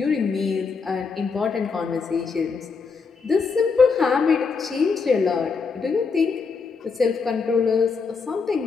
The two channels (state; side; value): quieter; right; 5.0 dB